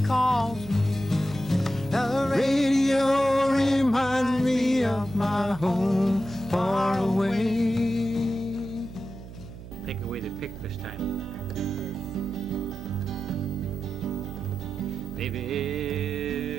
calls me. The radio reminds me of my home far away. Take away the pick this time. Baby,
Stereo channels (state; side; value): noise; right; hum, 14 dB below the sound